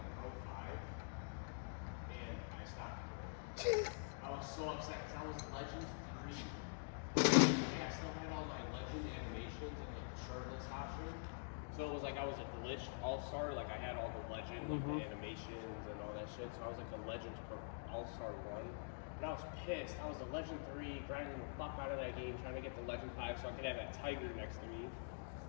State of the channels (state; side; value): silent; right; digital silence